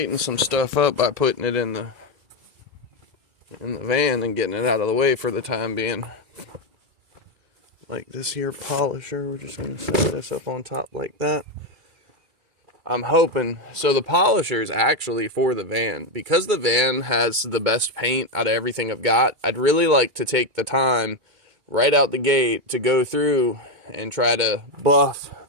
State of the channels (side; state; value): left; late; 2.3 ms